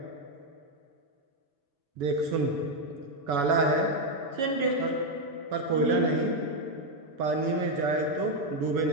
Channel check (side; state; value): left; late; 7.0 ms